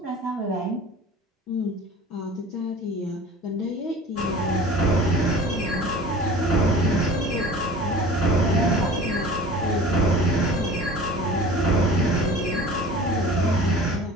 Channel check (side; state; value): both; normal; correlation 0.42